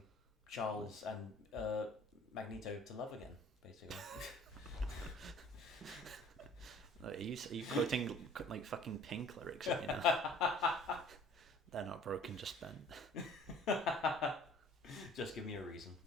Charles and Magneto to love again, basically. Are you quoting like fucking Pink lyrics? They're not broken, just bent. Just give me a reason.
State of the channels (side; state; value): both; normal; correlation 0.51